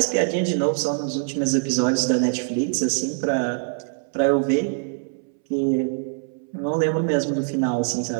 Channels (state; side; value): silent; left; 63 dB below the other